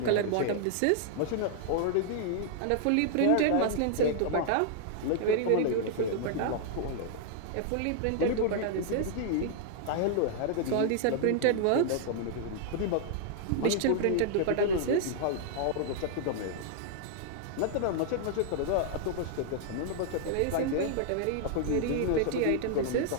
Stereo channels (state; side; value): different; both; correlation -0.01